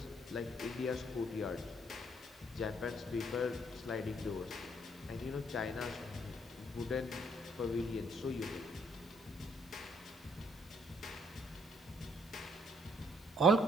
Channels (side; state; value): both; normal; correlation 0.66